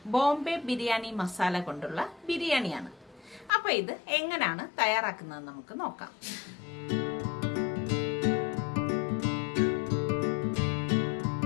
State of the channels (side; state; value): right; drops out; at 3.5 s